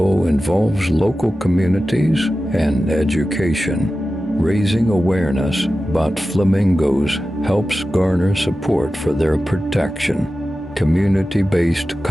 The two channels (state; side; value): normal; both; correlation 0.94